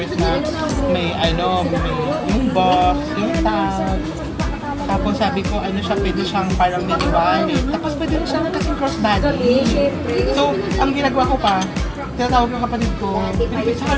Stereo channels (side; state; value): both; identical; correlation 1.00